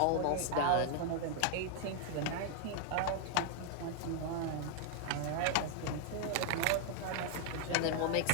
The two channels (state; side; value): different; both; correlation 0.00